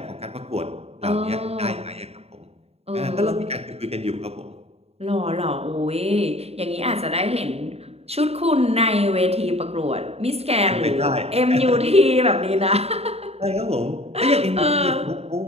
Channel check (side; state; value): left; late; 0.30 ms